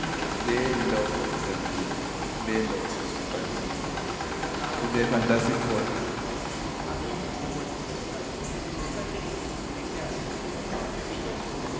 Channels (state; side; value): identical; both; correlation 1.00